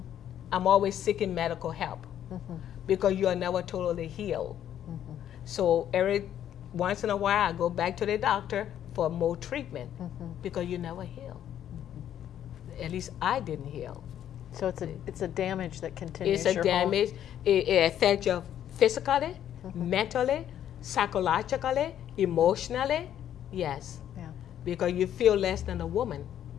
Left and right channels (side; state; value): right; quieter; 10.6 dB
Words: I'm always seeking medical help, because you are never totally healed. So every once in a while, I go back to the doctor for more treatment, because you never heal. At least I didn't heal. So it's a damage that continues. It's a damage. It affects you physically, mentally, psychologically, emotionally. Because you feel less than a woman.